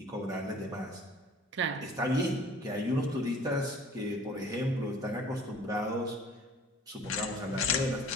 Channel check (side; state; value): both; normal; correlation 0.50